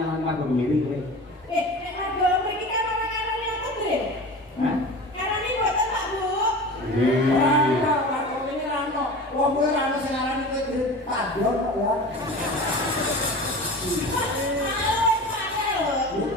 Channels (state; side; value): normal; both; correlation 0.34